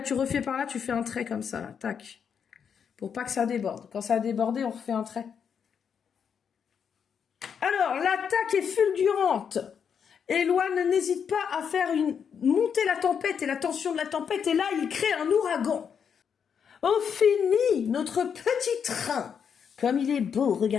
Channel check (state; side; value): quieter; right; 7.2 dB